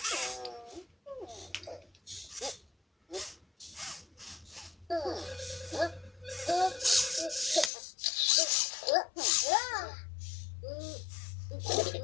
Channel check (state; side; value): drops out; right; at 7.7 s